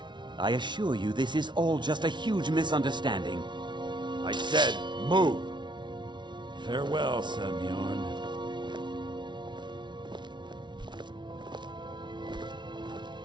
I assure you this is all just a huge misunderstanding. I said, move. Farewell, Sebjorn.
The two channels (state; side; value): late; left; 0.22 ms